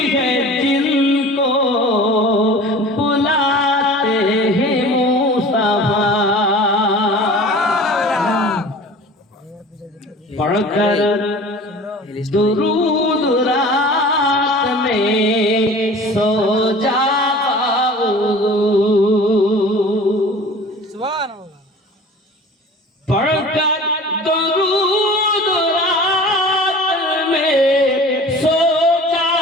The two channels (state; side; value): normal; both; correlation 0.42